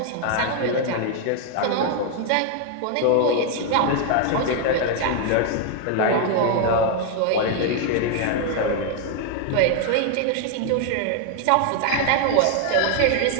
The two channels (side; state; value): both; different; correlation 0.00